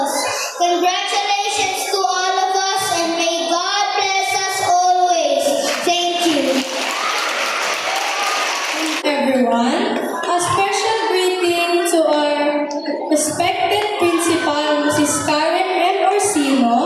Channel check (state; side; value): identical; both; correlation 1.00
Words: Congratulations to all of us, and may God bless us always. Thank you. Everyone, a special greeting to our respected principal, Mrs. Karen M.